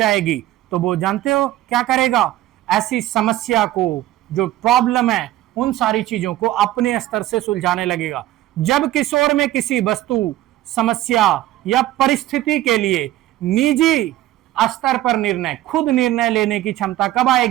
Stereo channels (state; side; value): quieter; left; 14.8 dB